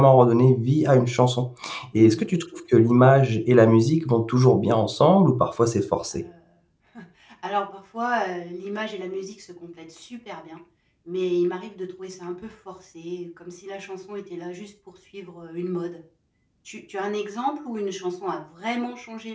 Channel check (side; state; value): both; identical; correlation 1.00